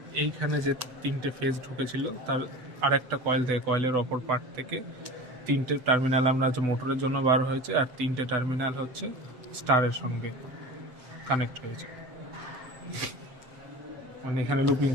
এইখানে যে 3টে ফেজ ঢুকেছিল তার আরেকটা কয়েলের অপর পার্ট থেকে 3টে টার্মিনাল আমরা হচ্ছে মোটরের জন্য বার হয়েছে, আর 3টে টার্মিনাল হচ্ছে স্টারের সঙ্গে কানেক্ট হয়েছে। মানে এখানে লুপিং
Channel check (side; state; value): left; late; 7.6 ms